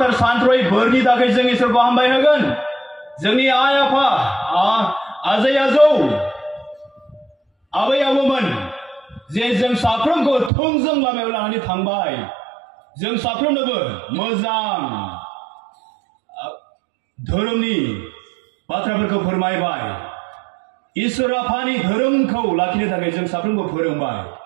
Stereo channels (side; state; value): left; drops out; at 10.5 s